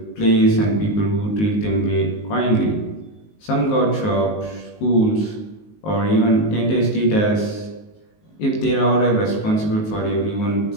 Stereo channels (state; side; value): late; right; 19 ms